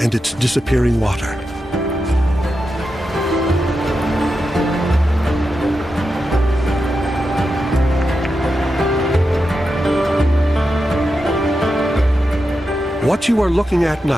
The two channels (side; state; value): both; normal; correlation 0.88